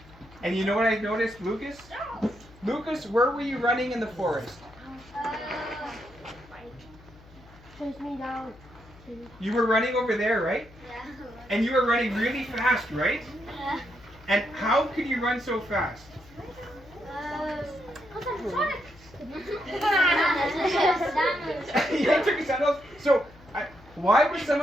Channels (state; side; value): noise; left; hum, 23 dB below the sound